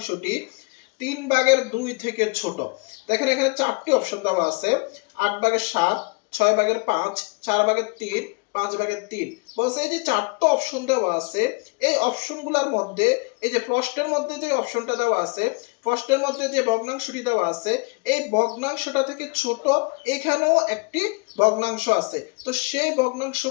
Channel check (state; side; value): quieter; right; 30.7 dB